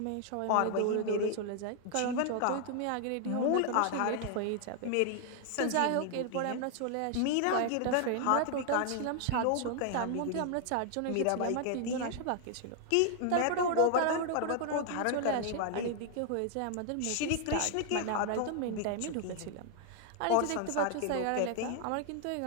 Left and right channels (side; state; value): both; different; correlation 0.00